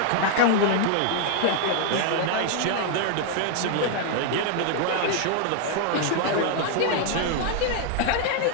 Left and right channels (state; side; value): different; both; correlation 0.00